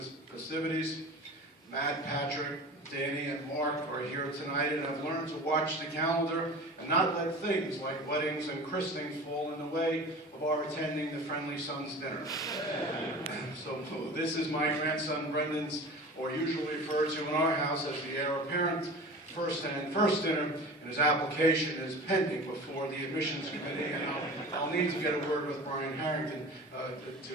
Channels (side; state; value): both; normal; correlation 0.37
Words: festivities. Matt, Patrick, Danny, and Mark are here tonight, and I've learned to watch the calendar and not let things like weddings and christenings fall in the way of our attending the Friendly Sons dinner. So this is my grandson Brendan's, or usually referred to in our house as the heir apparent, first dinner, and his application is pending before the admissions committee, and I'll need to get a word with Brian Harrington